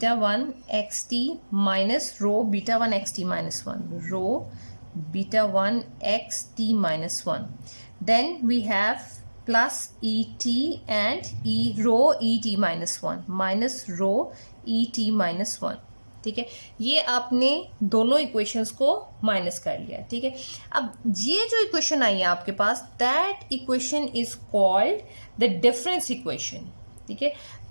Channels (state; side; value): inverted; both; correlation -1.00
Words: 1 x T minus rho beta 1 x T minus 1, rho beta 1 x T minus 1. Then we have plus et and rho e t minus 1 minus rho e t minus 1. ठीक है, ये आपने दोनों equations को minus कर लिया। ठीक है, अब ये जो इक्वेशन आई है आपके पास, that equation is called the difference equation. ठीक है,